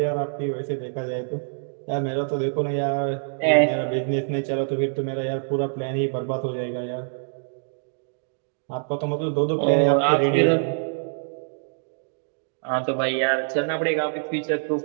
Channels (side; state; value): left; silent; digital silence